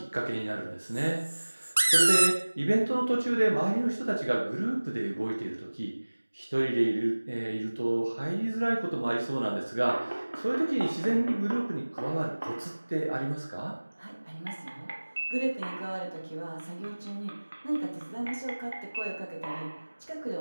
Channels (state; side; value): inverted; both; correlation -1.00